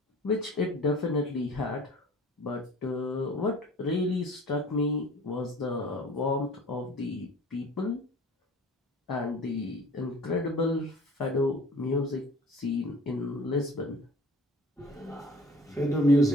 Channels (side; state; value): both; normal; correlation 0.47